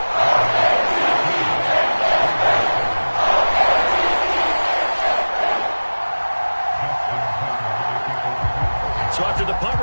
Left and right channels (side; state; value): both; inverted; correlation -1.00